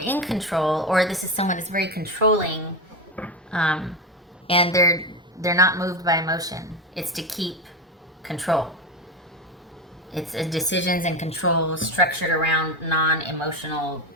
in control, or this is someone that's very controlling, and they're not moved by emotion. It's to keep control. It's decisions and control structured around non-emotional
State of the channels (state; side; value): normal; both; correlation 0.17